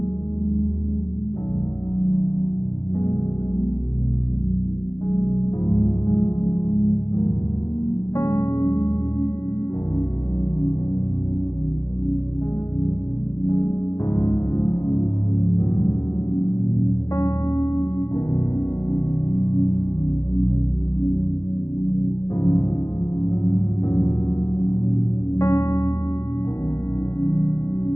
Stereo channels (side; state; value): right; late; 0.14 ms